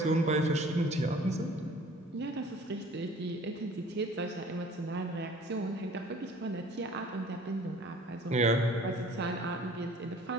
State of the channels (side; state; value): both; normal; correlation 0.50